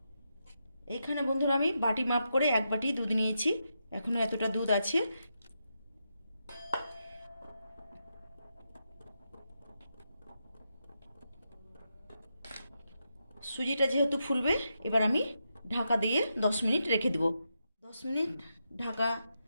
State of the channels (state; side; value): inverted; both; correlation -0.85